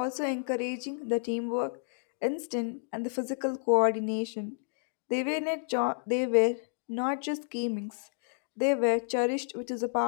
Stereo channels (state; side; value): silent; right; digital silence